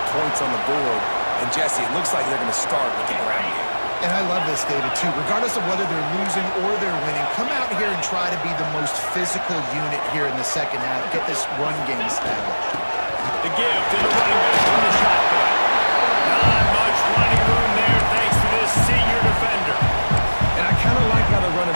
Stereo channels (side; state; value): both; inverted; correlation -1.00